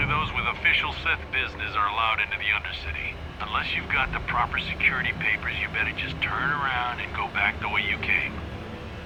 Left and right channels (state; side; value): identical; both; correlation 1.00